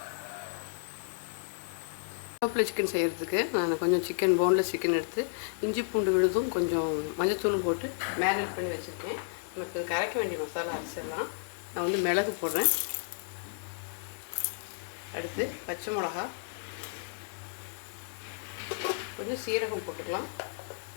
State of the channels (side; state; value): right; silent; digital silence